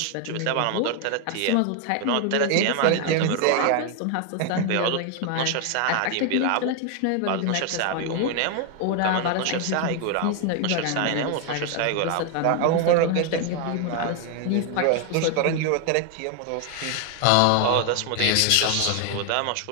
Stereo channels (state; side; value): different; both; correlation 0.01